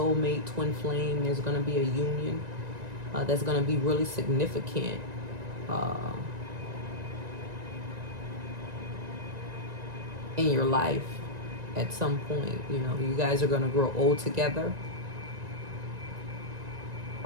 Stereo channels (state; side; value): late; left; 1.9 ms